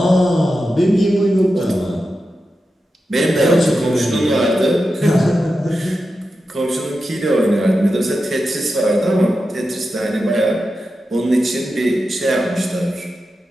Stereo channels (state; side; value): normal; both; correlation 0.90